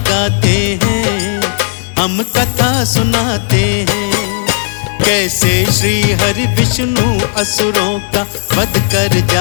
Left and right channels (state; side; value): silent; right; digital silence